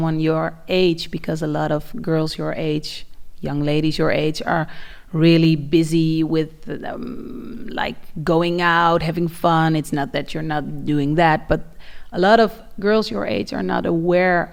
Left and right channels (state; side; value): identical; both; correlation 1.00